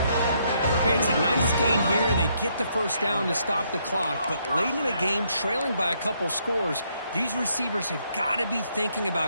Hey, it's a nice gain here. They get the 1st down to stop the clock, but late in the game, trailing by a couple scores, these receivers have got to be thinking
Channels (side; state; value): both; inverted; correlation -0.73